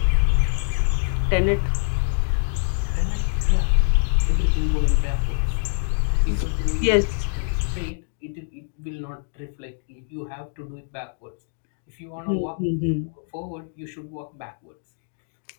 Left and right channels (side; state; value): right; silent; digital silence